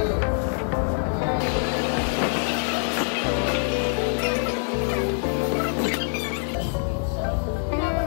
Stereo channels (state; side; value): silent; right; digital silence